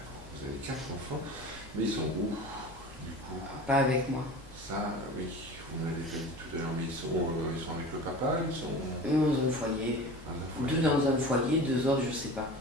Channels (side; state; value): both; normal; correlation 0.36